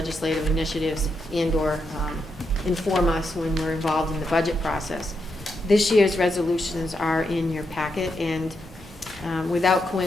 initiatives and/or inform us when we're involved in the budget process. This year's resolutions are in your packet, and without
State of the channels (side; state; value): both; normal; correlation 0.83